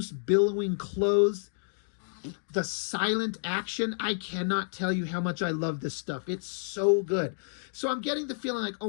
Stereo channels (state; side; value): silent; right; digital silence